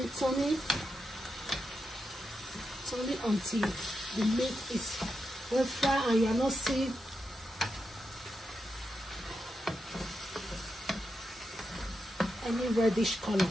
turning until the meat is well fried and you are not seeing any reddish color.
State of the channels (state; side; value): normal; both; correlation 0.86